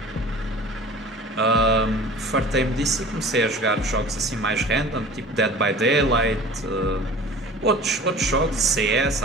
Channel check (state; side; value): normal; both; correlation 0.42